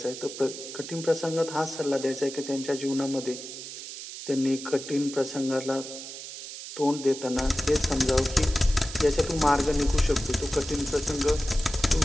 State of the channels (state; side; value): noise; right; hiss, 10 dB below the sound